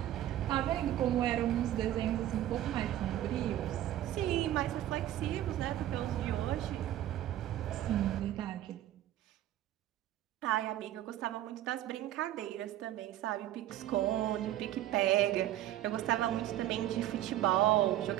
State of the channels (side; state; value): left; quieter; 13.1 dB